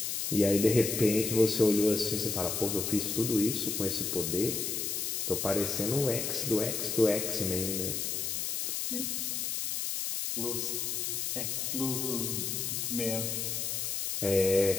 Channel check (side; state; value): left; noise; hiss, 1 dB below the sound